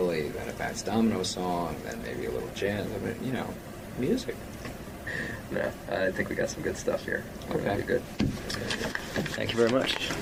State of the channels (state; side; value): identical; both; correlation 1.00